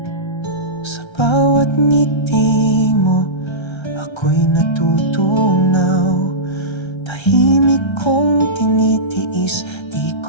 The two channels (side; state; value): right; late; 1.3 ms